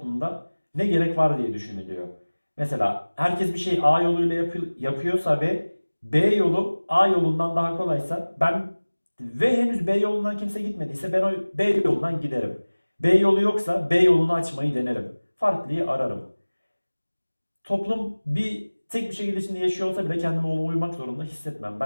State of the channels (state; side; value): inverted; both; correlation -1.00